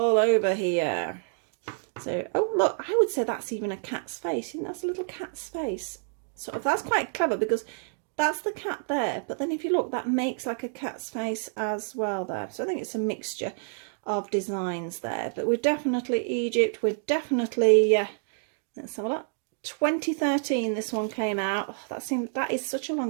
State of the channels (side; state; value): left; silent; digital silence